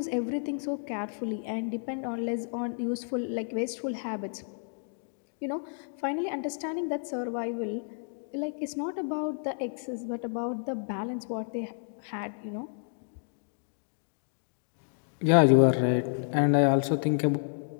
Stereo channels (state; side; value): silent; right; digital silence